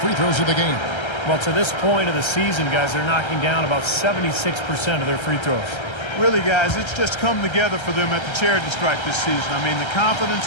throws of the game. Well, to this point of the season, guys, they're knocking down about 76% of their free throws. Really, guys, it's just come together for them at the charity stripe this season. I mean, the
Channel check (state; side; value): late; right; 1.3 ms